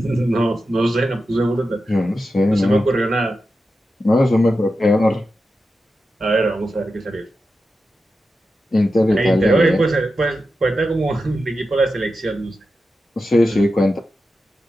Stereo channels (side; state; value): both; normal; correlation 0.90